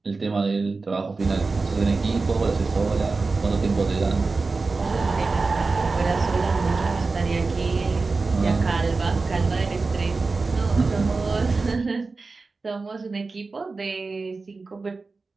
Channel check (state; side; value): quieter; left; 4.0 dB